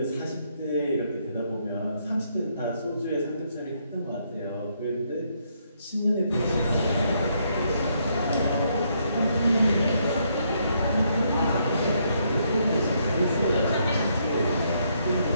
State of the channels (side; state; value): both; inverted; correlation -0.74